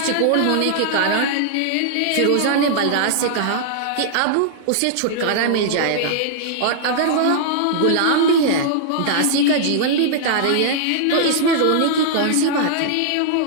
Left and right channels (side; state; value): both; different; correlation -0.01